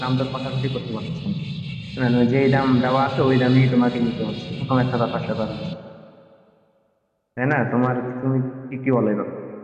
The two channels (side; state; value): both; identical; correlation 1.00